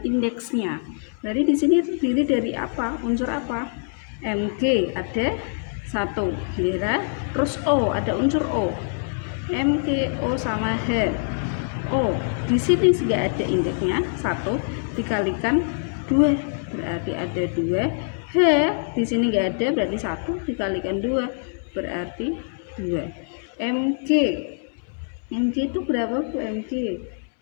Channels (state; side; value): silent; right; 62 dB below the other